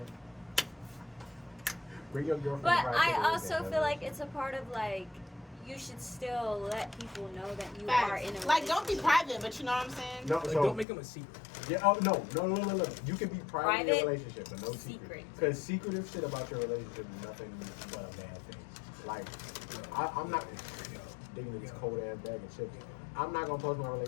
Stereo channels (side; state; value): right; drops out; at 10.9 s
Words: Bring your girlfriend. But right to I the also weekend, feel like it's a part of like you should still let people know that you are in a facts. Like, don't be relationship. private, but you know what I'm saying? No, Like, so don't make him a secret. yeah. Oh no. You can be private in your Private, relationship, but no secret. secret. Because secretive shit about your relationship is nothing but a bad thing. Like, I'm not digging in this cold ass bag of chips. I'm not gonna post my